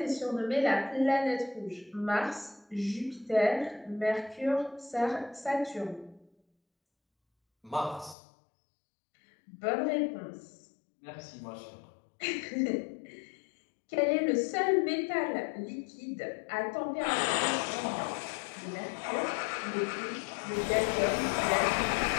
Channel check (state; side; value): drops out; right; at 8.2 s